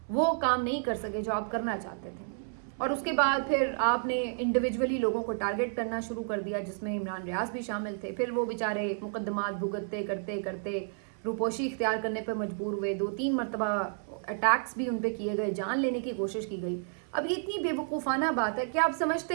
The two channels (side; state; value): left; silent; 57 dB below the other